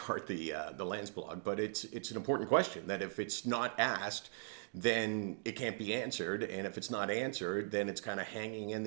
the Lance blog, but it's an important question that if it's not asked, then it can't be answered, and if it's not answered, then it's kind of hanging in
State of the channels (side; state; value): left; silent; digital silence